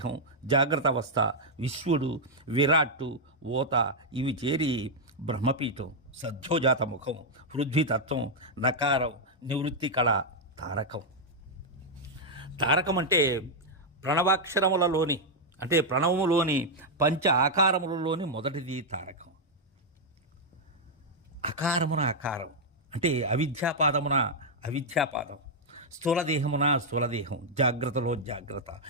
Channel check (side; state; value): both; normal; correlation -0.03